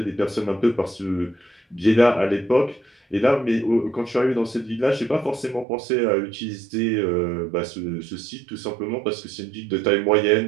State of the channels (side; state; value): left; drops out; at 5.7 s